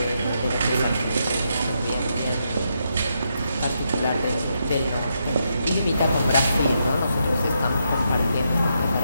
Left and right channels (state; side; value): inverted; both; correlation -0.81